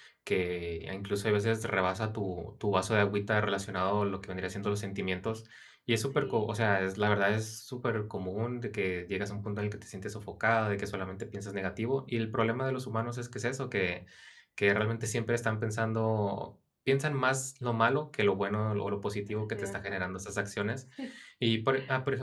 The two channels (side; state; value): both; identical; correlation 1.00